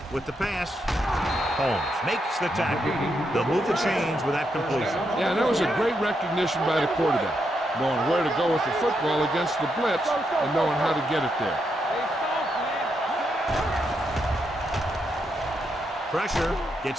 with the pass. Holmes makes the tackle. They'll move the chains with that completion. Yeah, that was a great recognition by the quarterback, knowing where to go with the football against the blitz and knowing how to get it there. Pressure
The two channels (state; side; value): normal; both; correlation 0.81